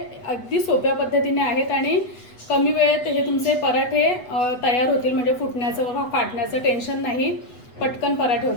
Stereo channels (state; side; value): late; right; 8.1 ms